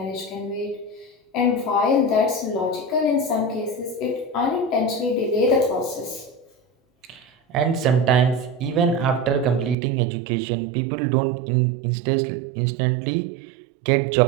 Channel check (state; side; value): drops out; left; at 9.8 s